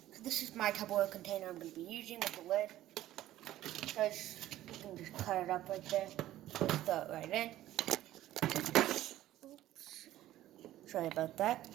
So this is my Tupperware container I'm going to be using with the lid. So you can just cut it up right there. Just throw it right in. Oops. Sorry about that.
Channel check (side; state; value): left; quieter; 14.0 dB